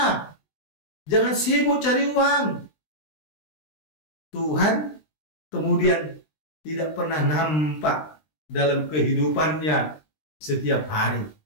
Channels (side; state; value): right; late; 20 ms